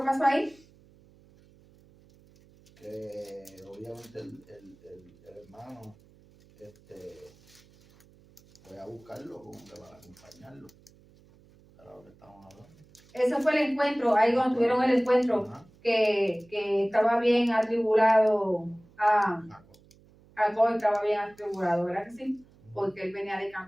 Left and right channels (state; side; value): noise; right; hum, 28 dB below the sound